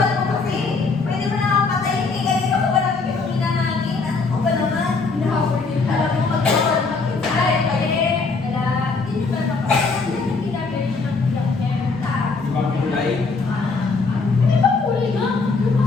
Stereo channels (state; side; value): quieter; right; 4.2 dB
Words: mo kasi. Pwede mo na ako patayin. Eh, ganito ko ba naman yung hinahangin? Ano ko ba naman? Hinahabol din. Alam mo, magkakawal ng kinsay. Kaya, wala. Hindi ba napapagod? Hindi na very sure ng Di ba kulay? Di ba kulay nga? Yung